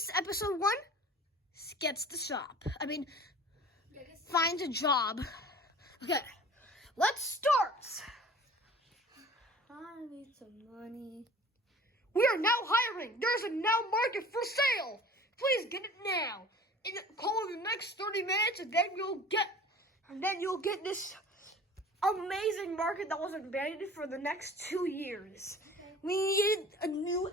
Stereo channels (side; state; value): both; normal; correlation 0.44